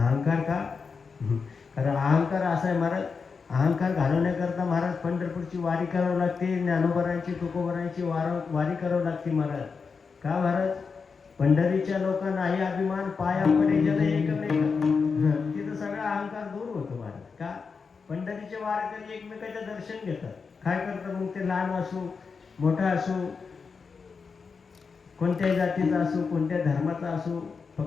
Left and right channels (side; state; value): right; quieter; 5.2 dB